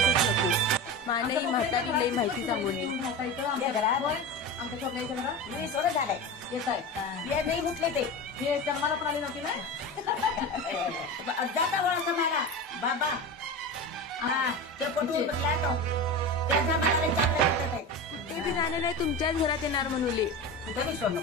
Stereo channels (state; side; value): normal; both; correlation 0.26